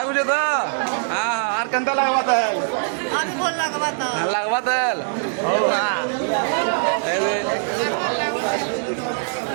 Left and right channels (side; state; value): left; silent; digital silence